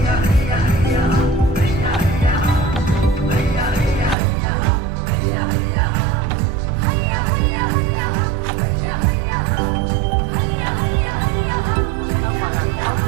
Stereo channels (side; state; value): left; drops out; at 4.2 s